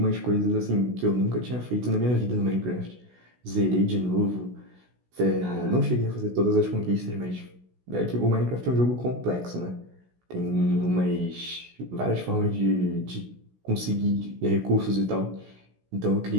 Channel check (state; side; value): late; left; 16 ms